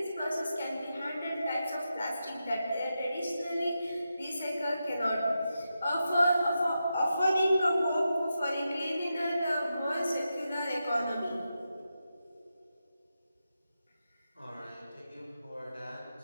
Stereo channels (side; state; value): both; inverted; correlation -0.88